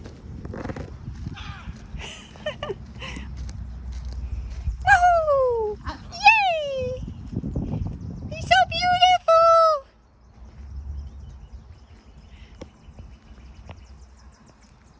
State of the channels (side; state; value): both; identical; correlation 1.00